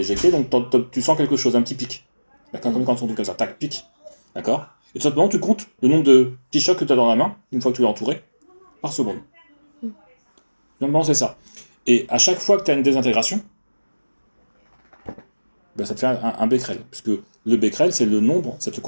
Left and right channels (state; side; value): inverted; both; correlation -1.00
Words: éjectée, donc tu sens quelque chose, un petit pic. D'accord. Comme quand on dit comme ça, tac, pic. D'accord. Et tout simplement, tu comptes le nombre de petits chocs que tu as dans la main, une fois que tu l'as entouré, par seconde. Normalement, c'est ça. Et à chaque fois que tu as une désintégration, ben, ça te fait un becquerel, puisque le becquerel, c'est le nombre, ça te